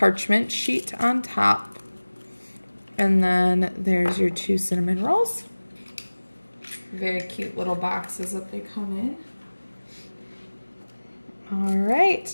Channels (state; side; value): inverted; both; correlation -1.00